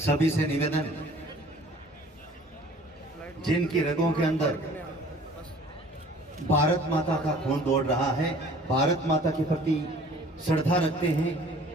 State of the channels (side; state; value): both; normal; correlation 0.50